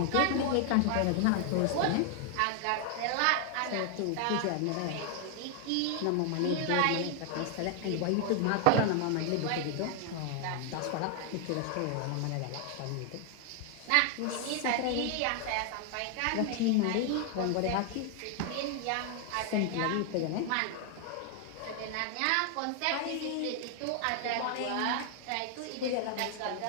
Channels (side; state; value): both; different; correlation 0.00